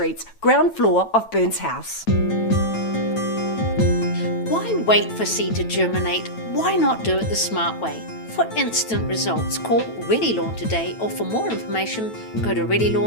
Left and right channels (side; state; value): right; late; 9.1 ms